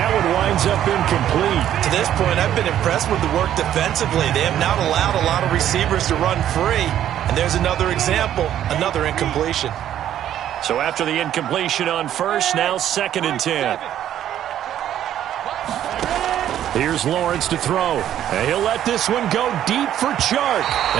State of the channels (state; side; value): quieter; left; 11.2 dB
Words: one winds up incomplete. To this point, I've been impressed with the work defensively. They have not allowed a lot of receivers to run free. And there's another example, another incompletion. So after the incompletion on 1st, now 2nd and 10. Here's Lawrence to throw. And he'll let this one go deep for Chark.